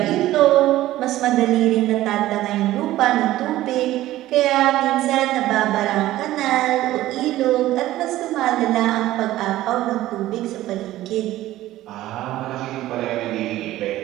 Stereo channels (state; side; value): quieter; left; 15.2 dB